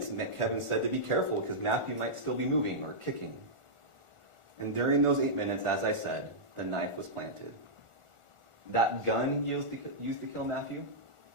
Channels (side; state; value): left; late; 1.4 ms